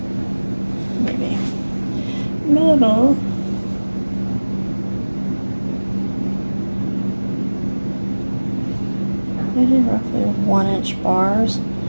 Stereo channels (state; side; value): inverted; both; correlation -1.00